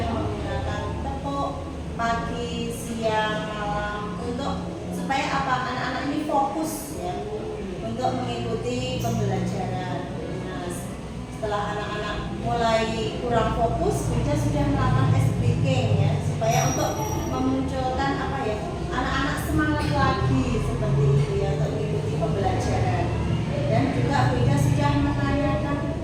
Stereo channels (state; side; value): identical; both; correlation 1.00